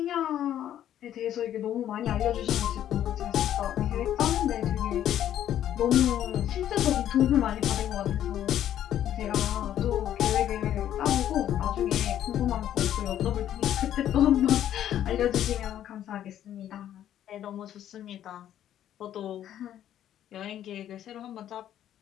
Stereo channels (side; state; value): right; quieter; 11.2 dB